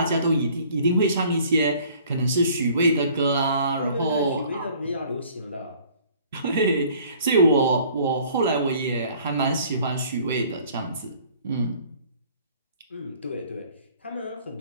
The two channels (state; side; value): inverted; both; correlation -0.54